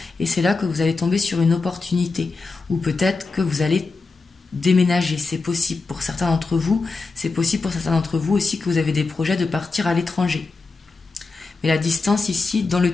et c'est là que vous allez tomber sur une opportunité, ou peut-être que vous allez déménager, c'est possible pour certains d'entre vous, c'est possible pour certains d'entre vous aussi que vous avez des projets de partir à l'étranger. Mais la distance ici, dans le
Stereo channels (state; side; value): quieter; right; 4.0 dB